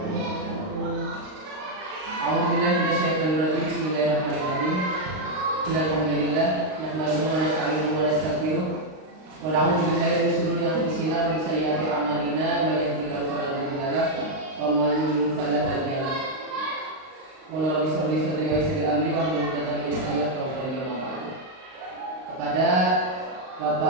A'udzubillahi minasyaitonirrajim. Bismillahirrahmanirrahim. Alhamdulillah, nahmaduhu wa nasta'inuhu wa nastaghfiruh. Wa na'udzu billahi min shururi anfusina wa min sayyiati a'malina. May yahdihillahu fala mudilla lahu wa may yudlil fala hadiya lahu. Qul rabbi shrah li sadri wa yassir li amri wahlul 'uqdatam min lisani yafqahu qawli. Kepada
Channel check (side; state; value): left; late; 38 ms